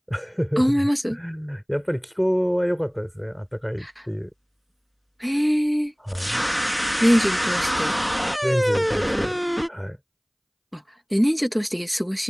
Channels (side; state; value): both; identical; correlation 1.00